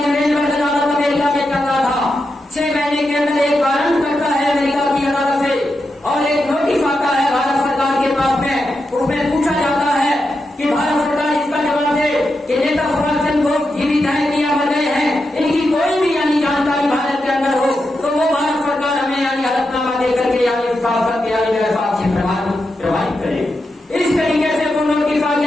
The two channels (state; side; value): normal; both; correlation 0.87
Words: अदालत अमेरिका में चल रहा था। 6 महीने के अंदर एक वारंट करता है अमेरिका की अदालत से और एक नोटिस आता है भारत सरकार के पास में। उसमें पूछा जाता है कि भारत सरकार इसका जवाब दे कि नेता सुभाष चंद्र बोस जीवित है कि या मर गए हैं, इनकी कोई भी यानी जानकारी भारत के अंदर हो तो वो भारत सरकार हमें यानी हलफनामा देकर के यानी शासक यानी साक्ष्य प्रभावित करे। इस तरीके से वो नोटिस आ